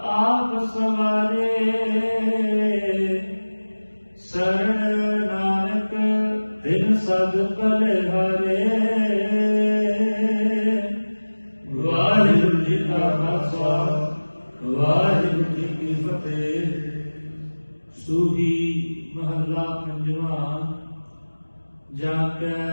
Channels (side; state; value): both; inverted; correlation -1.00